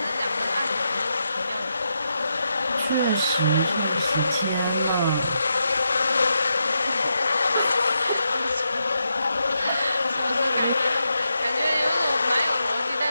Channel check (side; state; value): both; inverted; correlation -0.84